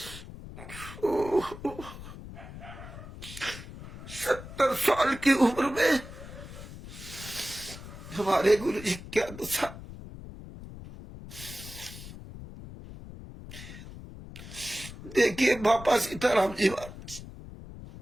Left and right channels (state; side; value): noise; left; rumble, 13 dB below the sound